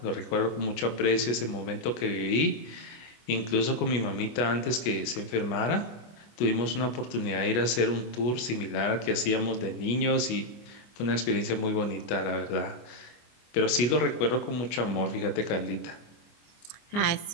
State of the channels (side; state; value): right; late; 25 ms